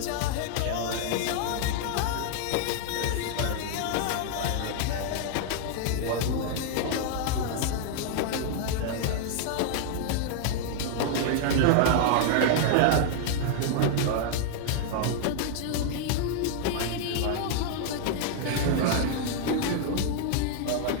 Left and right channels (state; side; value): different; both; correlation 0.00